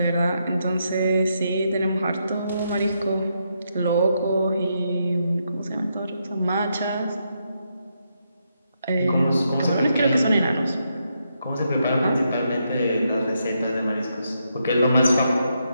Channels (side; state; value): both; inverted; correlation -0.81